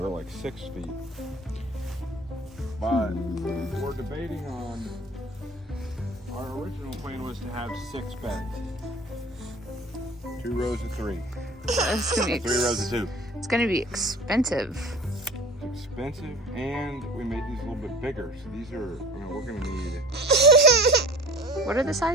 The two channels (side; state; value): both; normal; correlation 0.43